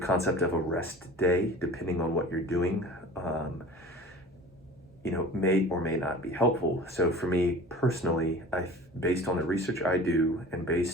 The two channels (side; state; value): both; normal; correlation 0.41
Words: of a rest day, depending on what you're doing, may or may not be helpful. So for me personally, based on the research I do and